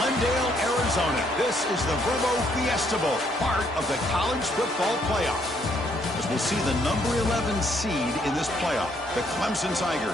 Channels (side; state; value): both; normal; correlation 0.70